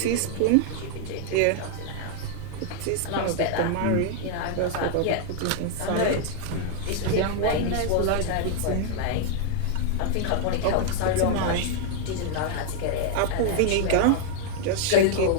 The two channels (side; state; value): both; different; correlation 0.00